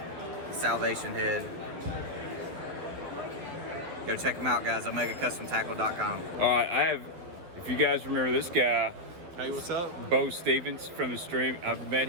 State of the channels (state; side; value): late; left; 12 ms